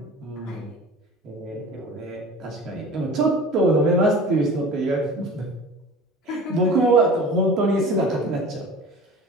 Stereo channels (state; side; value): normal; both; correlation 0.39